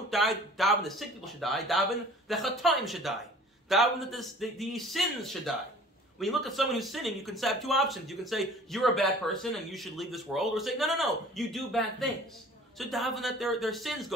daven the sick people should die. Daven the chataim should die. Daven that the sins should die. When you look at someone who's sinning, you can have two options. You can say, you're a bad person and you should leave this world. Or say, no, you do bad things. So daven that their sins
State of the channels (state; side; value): normal; both; correlation 0.48